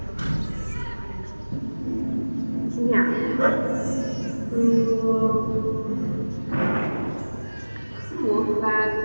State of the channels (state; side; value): inverted; both; correlation -1.00